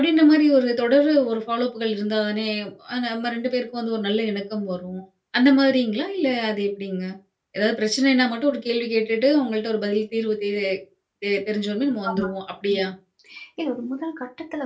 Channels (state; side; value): identical; both; correlation 1.00